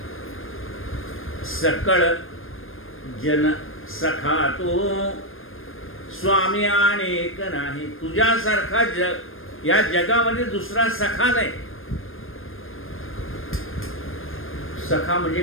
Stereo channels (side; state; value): right; late; 0.59 ms